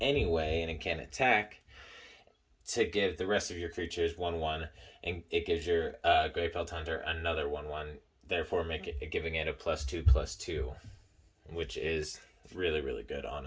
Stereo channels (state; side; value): identical; both; correlation 1.00